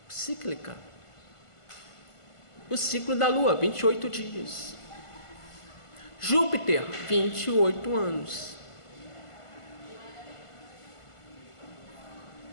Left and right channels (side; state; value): right; late; 1.5 ms